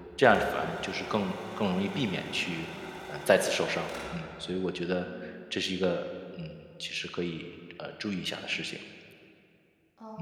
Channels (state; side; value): identical; both; correlation 1.00